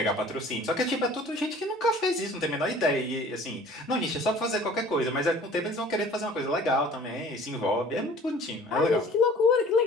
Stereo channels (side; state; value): both; normal; correlation 0.48